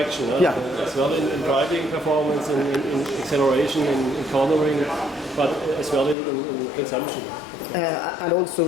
As well in driving performance, in acceleration, in cornering, but as well in consumption. And also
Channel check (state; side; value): drops out; right; at 6.2 s